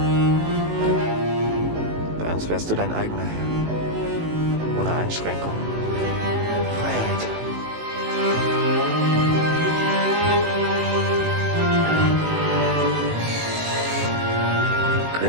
Bei uns wärst du dein eigener Herr. Ohne Einschränkung. Freiheit.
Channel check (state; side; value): late; left; 18 ms